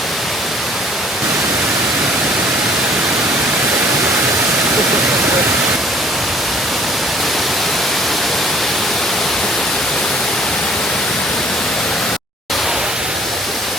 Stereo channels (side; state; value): both; normal; correlation 0.56